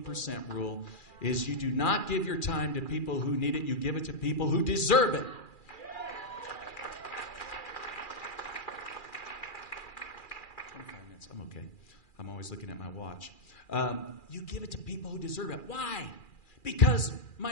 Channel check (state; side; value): late; right; 2.4 ms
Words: rule is you do not give your time to people who need it. You give it to people who deserve it. 25 minutes. I'm okay. I'm always looking at my watch. You give it to people who deserve it. Why? Because,